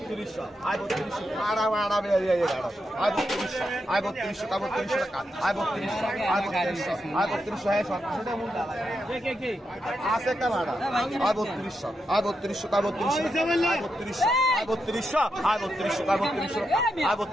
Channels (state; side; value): normal; both; correlation 0.85